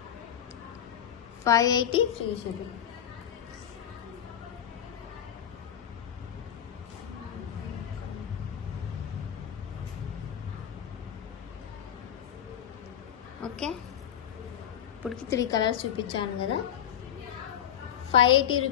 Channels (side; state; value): right; quieter; 9.8 dB